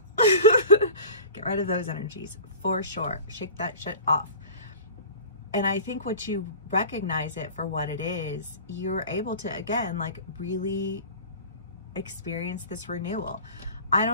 rid of those energies for sure. Shake that shit off. And I think once you recognize it for what it is, you're able to, again, like really experience this renewal. I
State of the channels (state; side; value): inverted; both; correlation -0.38